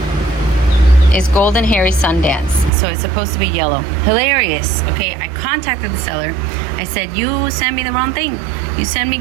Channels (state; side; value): drops out; left; at 2.7 s